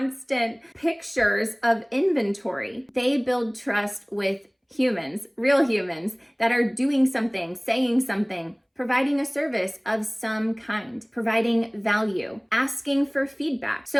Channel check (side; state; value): both; identical; correlation 1.00